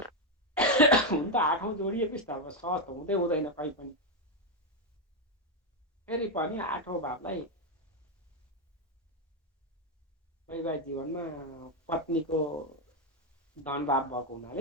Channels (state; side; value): normal; both; correlation 0.05